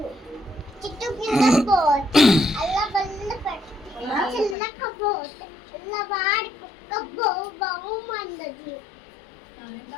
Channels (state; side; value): drops out; right; at 4.5 s